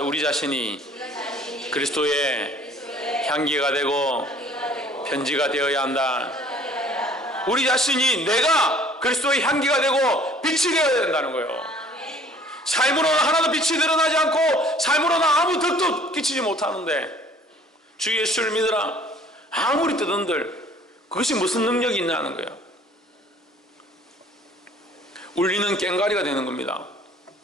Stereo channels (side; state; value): both; normal; correlation 0.54